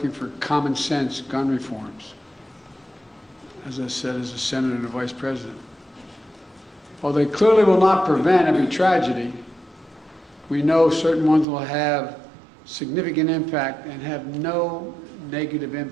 for common sense gun reforms. As I said, as a senator and a vice president. While they clearly will not prevent every tragedy, we know certain ones will have significant impact and have no negative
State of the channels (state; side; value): drops out; left; at 11.5 s